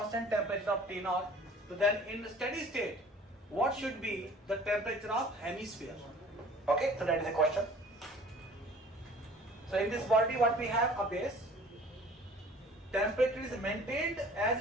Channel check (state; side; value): normal; both; correlation 0.49